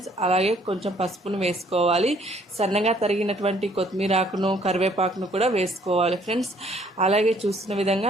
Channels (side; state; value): both; normal; correlation 0.63